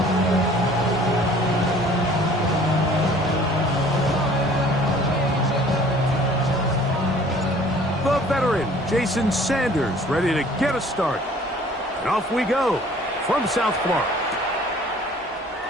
Veteran Jason Sanders ready to get us started. And off we go from South Florida.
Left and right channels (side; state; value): both; normal; correlation 0.52